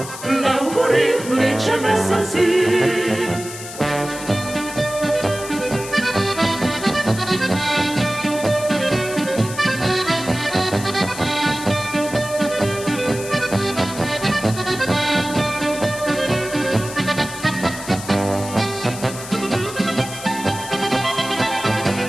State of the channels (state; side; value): noise; left; hiss, 12 dB below the sound